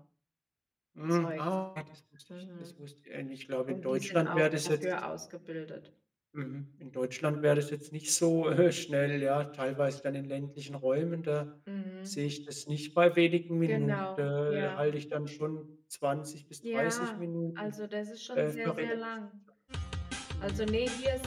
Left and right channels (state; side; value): identical; both; correlation 1.00